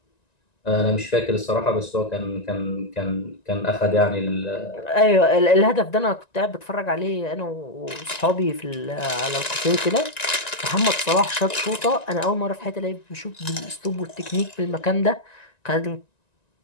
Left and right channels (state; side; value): late; right; 1.9 ms